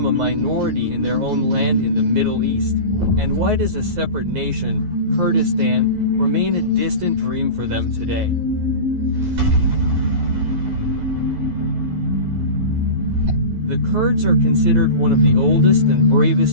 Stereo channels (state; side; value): late; left; 11 ms